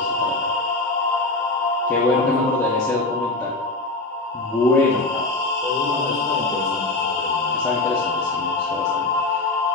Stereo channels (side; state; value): right; quieter; 3.2 dB